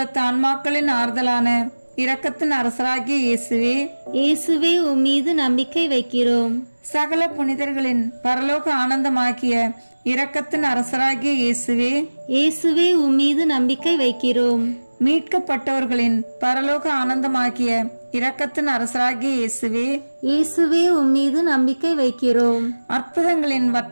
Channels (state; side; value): inverted; both; correlation -1.00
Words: ஆன்மாக்களின் ஆறுதலான இரக்கத்தின் அரசராகிய இயேசுவே, இயேசுவே உம்மீது நம்பிக்கை வைக்கிறோம். சகல புனிதர்களின் பரலோக ஆனந்தமாகிய இரக்கத்தின் அரசராகிய இயேசுவே, இயேசுவே உம்மீது நம்பிக்கை வைக்கிறோம். மீட்கப்பட்டவர்களின் பரலோக ஆனந்தமாகிய இரக்கத்தின் அரசராகிய இயேசுவே, இயேசுவே உம்மீது நம்பிக்கை வைக்கிறோம். அற்புதங்களின்